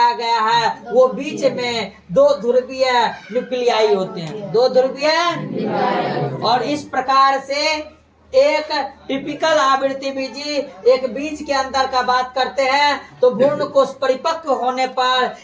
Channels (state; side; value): identical; both; correlation 1.00